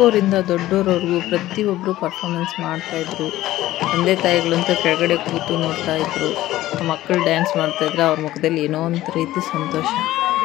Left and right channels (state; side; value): quieter; right; 15.3 dB